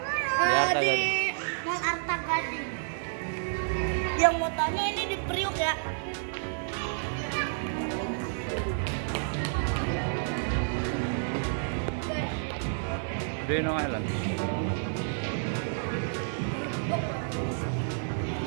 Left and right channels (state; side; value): silent; left; digital silence